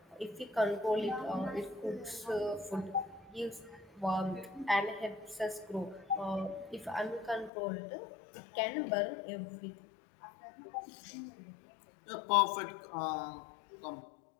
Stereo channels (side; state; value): right; drops out; at 7.5 s